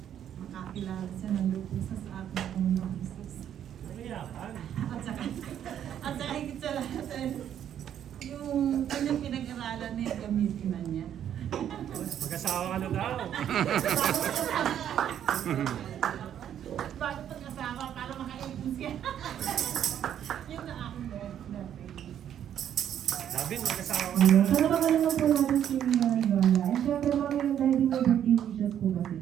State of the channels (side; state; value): left; quieter; 9.9 dB